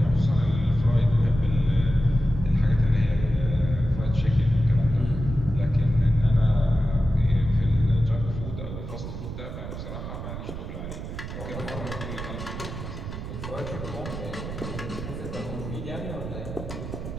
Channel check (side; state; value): right; noise; rumble, 8 dB below the sound